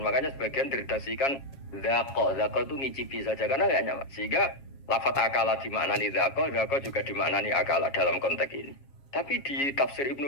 Makanya sebagian diredaksikan zako itu ngicipi saja karena nggak nyaman. Sehingga lafat akala dimaknani zako juga dimaknani akala dalam konteks ini. Tapi di tafsir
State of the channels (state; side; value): late; right; 7.3 ms